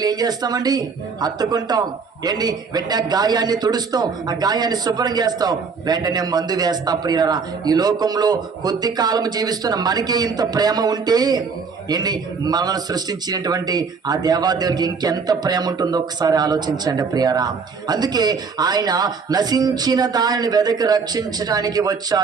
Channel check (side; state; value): left; quieter; 5.3 dB